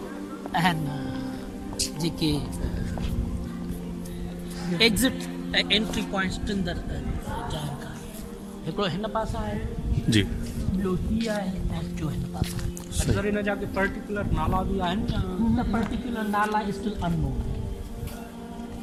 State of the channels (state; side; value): identical; both; correlation 1.00